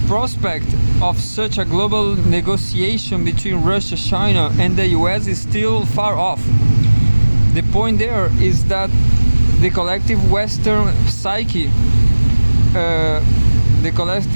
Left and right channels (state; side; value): inverted; both; correlation -1.00